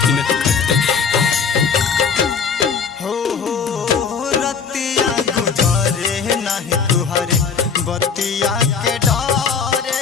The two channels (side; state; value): right; quieter; 6.0 dB